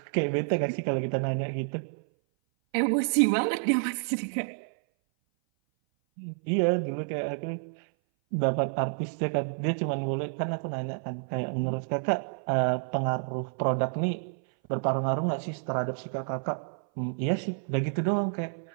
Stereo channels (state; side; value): silent; left; 57 dB below the other